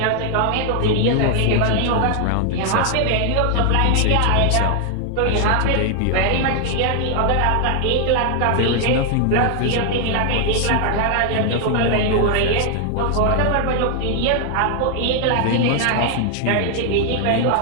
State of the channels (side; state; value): both; different; correlation 0.00